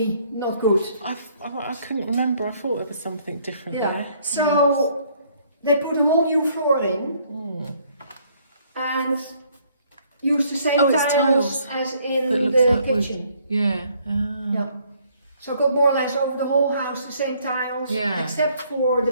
not good. I couldn't remember. I thought there was something different there. So they put a whole new floor in and used the same tiles as in the kitchen. Yeah. So I got more or less over the whole house the same tiles, except for the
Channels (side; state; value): both; inverted; correlation -0.65